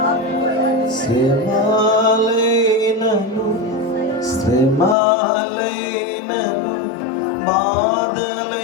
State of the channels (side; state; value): right; drops out; at 5.0 s